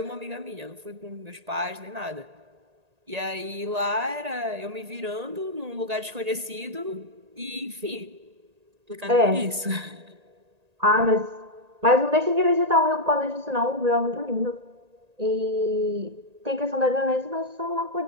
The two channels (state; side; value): late; left; 1.8 ms